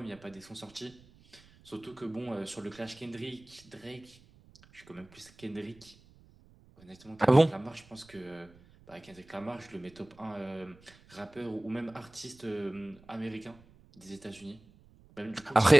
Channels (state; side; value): noise; right; rumble, 25 dB below the sound